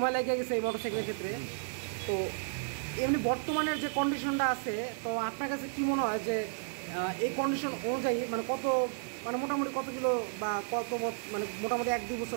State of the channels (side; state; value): left; silent; digital silence